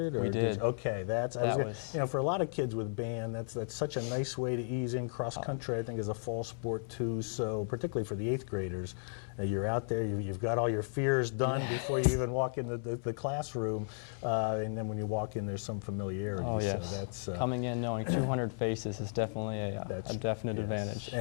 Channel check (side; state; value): right; silent; 55 dB below the other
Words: Or we did. Okay, you know, for a lot of kids with band, that's such a nice way to ease in. Cross country, I think, is a fall sport too. So particularly for the 8th graders, you're out there, you've got all your fears done before you even walk in the classroom, and then when you walk in, there's some familiarity. Oh, yes. So that's coming in knowing 200 faces is definitely a definite advantage.